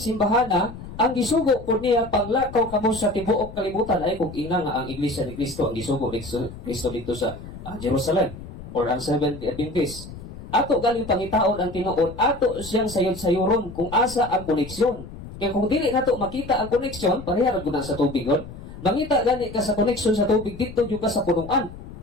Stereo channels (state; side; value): noise; left; rumble, 13 dB below the sound